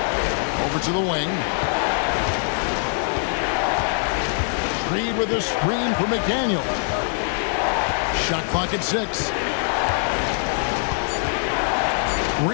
Over to the wing. Reed with a screen for McDaniel. Shot clock at 6.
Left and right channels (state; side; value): silent; right; digital silence